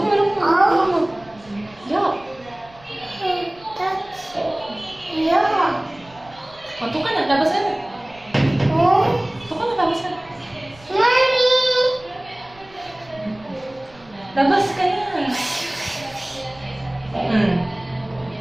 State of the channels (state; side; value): noise; right; rumble, 25 dB below the sound